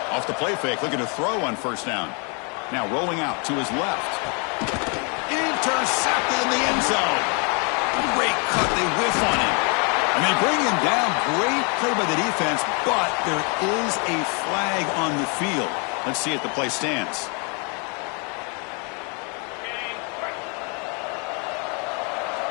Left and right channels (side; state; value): right; quieter; 35.1 dB